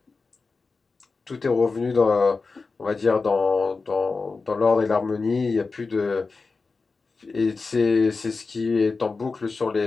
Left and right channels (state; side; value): quieter; right; 4.2 dB